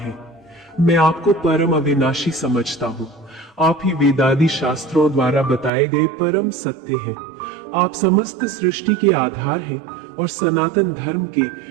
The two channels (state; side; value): drops out; left; at 5.7 s